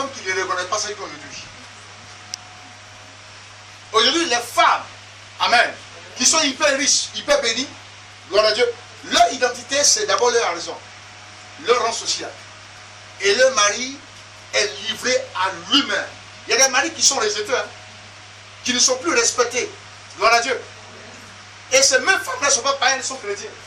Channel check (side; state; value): both; identical; correlation 1.00